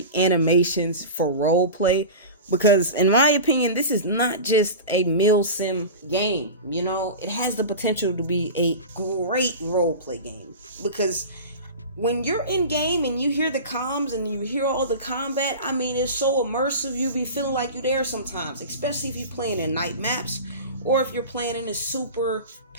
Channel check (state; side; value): inverted; both; correlation -0.30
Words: animations for roleplay, because in my opinion, this is not just a mil sim game. You know, it has the potential to be a great roleplay game, because when you're in game and you hear the comms and you hear all the combat, I mean, it's so immersive. You be feeling like you're there sometimes, especially if you're playing in night maps or if you're playing in a super